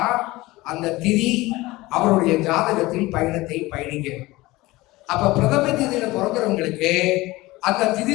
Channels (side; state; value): right; quieter; 19.9 dB